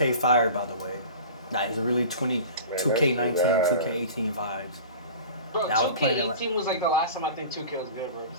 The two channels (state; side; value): inverted; both; correlation -0.38